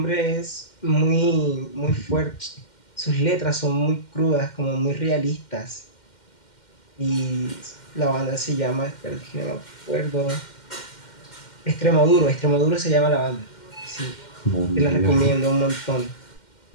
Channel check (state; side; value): late; right; 2.1 ms